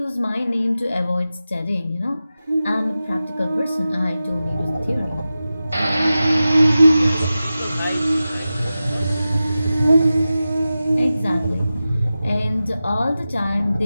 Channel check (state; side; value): inverted; both; correlation -0.94